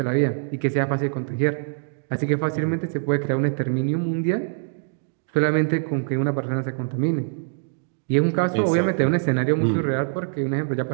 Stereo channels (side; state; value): left; silent; digital silence